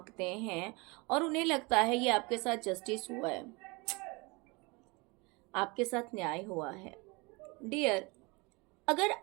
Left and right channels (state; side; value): quieter; left; 26.8 dB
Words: हैं, और उन्हें लगता है ये आपके साथ जस्टिस हुआ है, आपके साथ न्याय हुआ है। डियर, अगर